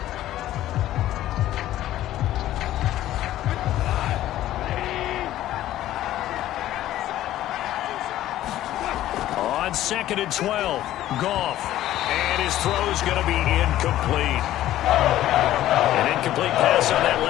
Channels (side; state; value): right; quieter; 13.7 dB